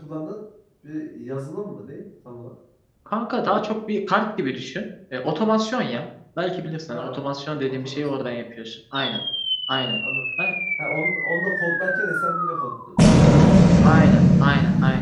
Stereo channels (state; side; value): identical; both; correlation 1.00